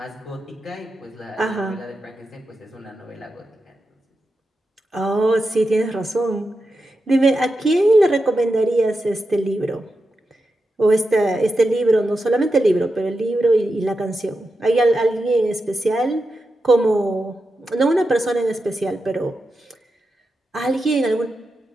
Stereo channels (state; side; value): normal; both; correlation 0.89